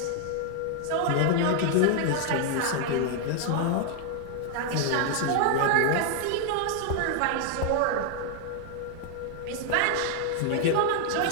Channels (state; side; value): different; both; correlation 0.00